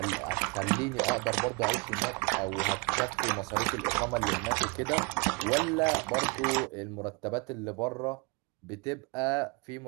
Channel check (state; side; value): quieter; left; 29.6 dB